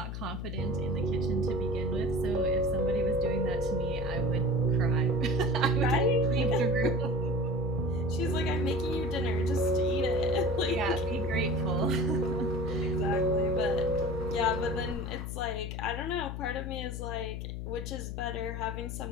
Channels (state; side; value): noise; left; hum, 6 dB below the sound